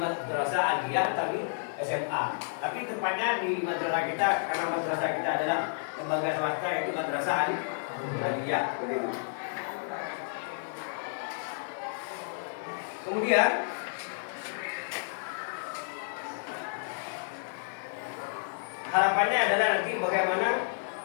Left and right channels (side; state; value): right; silent; digital silence